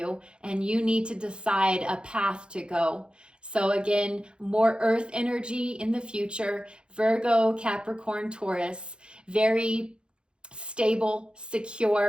and you need to decide a path to go. So again, more earth energy in the future, Virgo, Capricorn, Taurus, very stable,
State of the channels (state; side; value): late; left; 0.054 ms